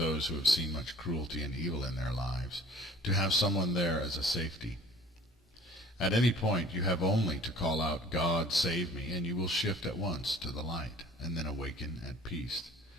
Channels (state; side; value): normal; both; correlation 0.49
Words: who have seen much cruelty and evil in their lives, to have someone there as a safety. At any point you have only to call out, "God, save me," and you will shift at once to the light, and then awaken at peace,